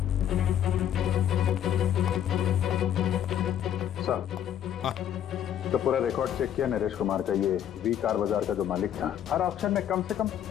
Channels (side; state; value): right; quieter; 10.2 dB